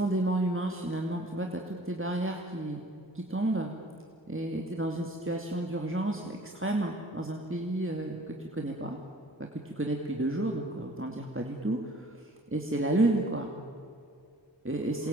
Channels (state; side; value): normal; both; correlation 0.52